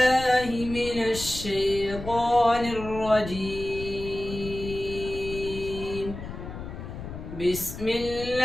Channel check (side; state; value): left; noise; rumble, 10 dB below the sound